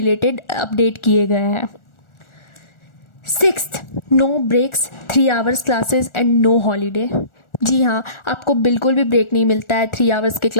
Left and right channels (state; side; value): late; right; 1.4 ms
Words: अपडेट किए गए हैं। Sixth, no breaks, 3 hours classes and no holiday. जी हाँ, आपको बिल्कुल भी ब्रेक नहीं मिलता है 3 आवर्स के